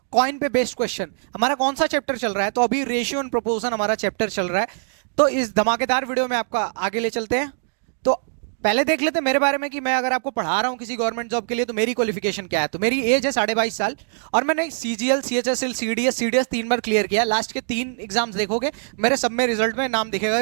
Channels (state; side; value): silent; left; digital silence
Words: कॉइन पे बेस्ड क्वेश्चन। हमारा कौन सा चैप्टर चल रहा है? तो अभी रेशियो एंड प्रोपोर्शन हमारा चैप्टर चल रहा है। तो इस धमाकेदार वीडियो में आपका आगे ले चलते हैं। तो पहले देख लेते हैं मेरे बारे में कि मैं अगर आपको पढ़ा रहा हूं किसी गवर्नमेंट जॉब के लिए तो मेरी क्वालिफिकेशन क्या है। तो मेरी एज है 22.5 साल और मैंने सीजीएल, सीएचएसएल, सीडीएस 3 बार क्लियर किया। लास्ट के 3 एग्जाम्स देखोगे मेरे सब में रिजल्ट में नाम दिखेगा,